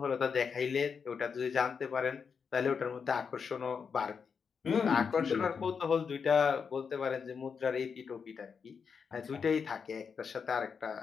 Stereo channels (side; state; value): right; quieter; 6.1 dB